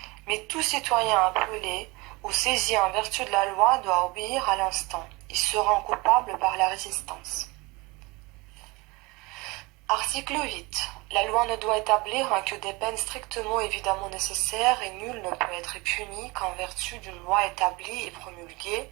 Mais tout citoyen appelé ou saisi en vertu de la loi doit obéir à l'instant. Il se rend coupable par la résistance. Article 8. La loi ne doit établir que des peines strictement évidemment nécessaires et nul ne peut être puni qu'en vertu d'une loi établie et promulguée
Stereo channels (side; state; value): left; quieter; 24.6 dB